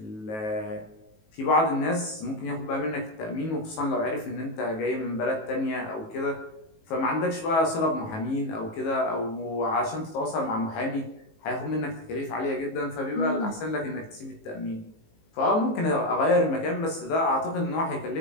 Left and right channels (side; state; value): right; late; 19 ms